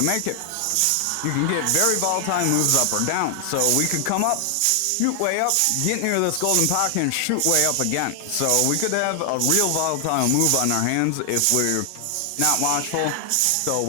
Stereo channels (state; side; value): different; both; correlation 0.00